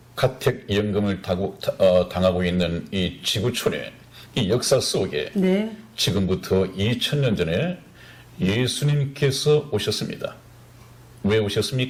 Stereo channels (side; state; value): both; identical; correlation 1.00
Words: 가택연금을 당하고 있는 이 지구촌의 이 역사 속에 네. 지금부터 2000년 전에 예수님께서 오셨습니다. 왜